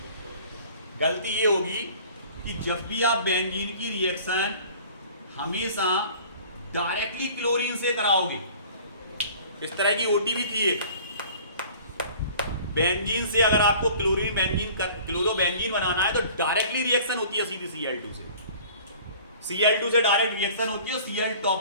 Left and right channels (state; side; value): inverted; both; correlation -0.48